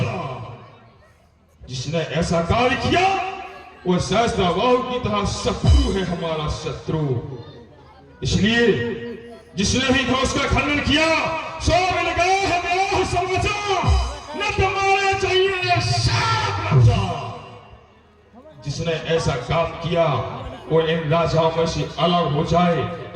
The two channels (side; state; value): both; identical; correlation 1.00